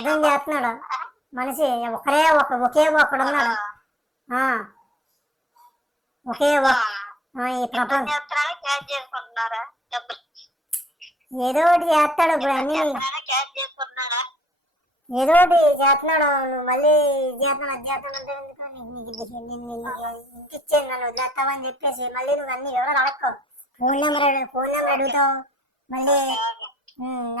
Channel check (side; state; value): both; normal; correlation 0.59